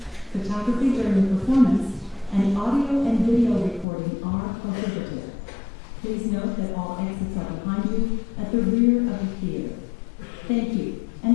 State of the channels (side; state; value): right; drops out; at 3.9 s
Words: Photography during the performance and audio and video recording are prohibited. Please note that all exits are behind you at the rear of the theater. Thank you, and